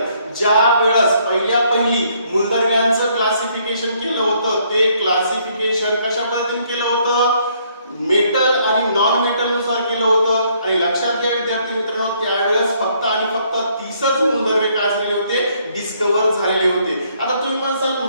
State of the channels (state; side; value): inverted; both; correlation -0.67